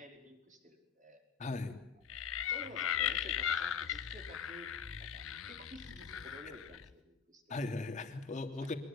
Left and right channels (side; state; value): right; quieter; 6.6 dB